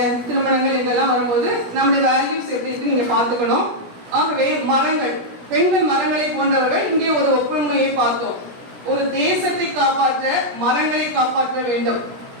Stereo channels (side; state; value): left; late; 17 ms